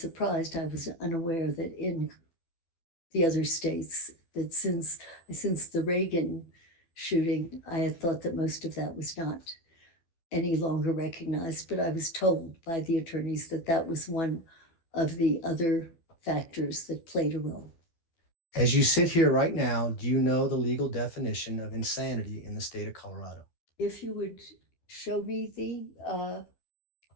I was unaware that in the other states, that since the Reagan shooting, I had thought that most of that was not any longer recognized, but I was told by the attorneys that that was one of the other factors that played a role. As you sit here right now, do you know the legal definition of insanity in the state of Colorado? If you would show me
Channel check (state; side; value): late; right; 12 ms